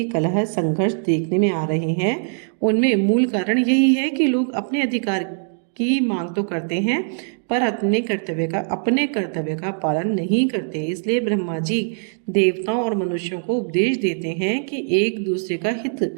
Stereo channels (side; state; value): left; silent; 65 dB below the other